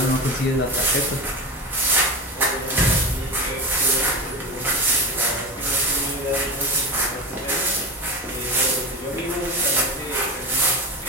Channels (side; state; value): both; normal; correlation 0.24